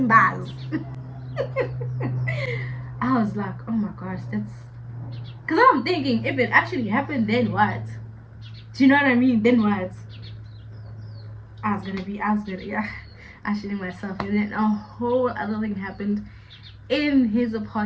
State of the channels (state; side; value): identical; both; correlation 1.00